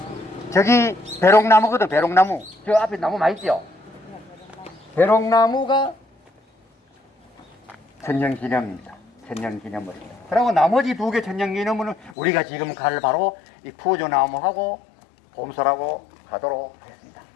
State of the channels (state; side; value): drops out; right; at 12.2 s